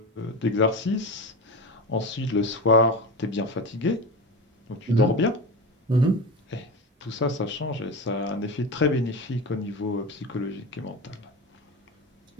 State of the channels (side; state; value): both; normal; correlation 0.24